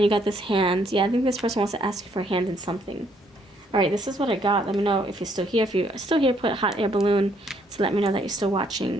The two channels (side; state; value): both; normal; correlation 0.69